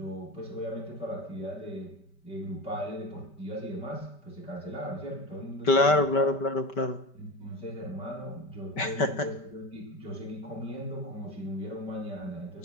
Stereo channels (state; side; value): late; right; 5.1 ms